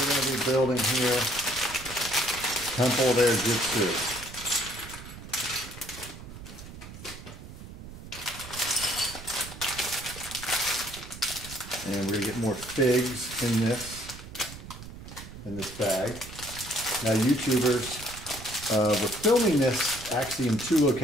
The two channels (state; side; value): noise; right; rumble, 14 dB below the sound